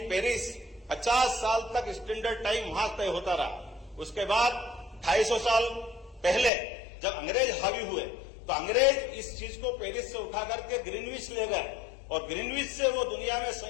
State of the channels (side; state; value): right; drops out; at 6.5 s